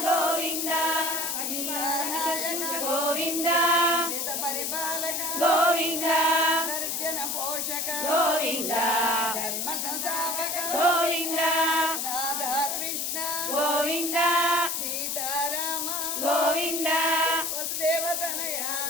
గోవింద గోవింద పరిపాలక గోవింద దర్జన పోషక గోవింద ధర్మ సంస్థాపక గోవింద రాధాకృష్ణ గోవింద సీతారామ గోవింద వసుదేవతనయ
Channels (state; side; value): noise; left; hiss, 1 dB below the sound